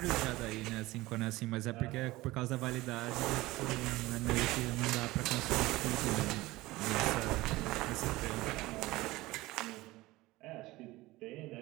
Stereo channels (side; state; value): left; quieter; 19.2 dB